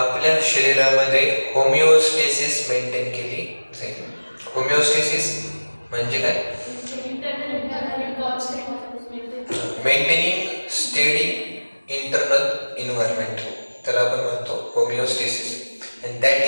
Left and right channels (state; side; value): inverted; both; correlation -1.00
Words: शरीरामध्ये होमिओस्टेसिस मेंटेन केली जाईल. होमिओस्टेसिस म्हणजे काय? मेंटेनिंग स्टेडी इंटरनल इन्व्हायरमेंट, त्याला आपण म्हणतो होमिओस्टेसिस. And that